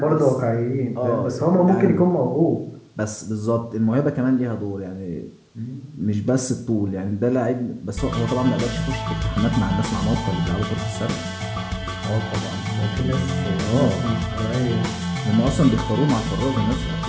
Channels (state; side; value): identical; both; correlation 1.00